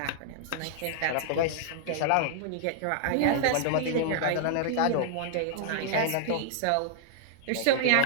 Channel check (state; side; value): different; both; correlation -0.01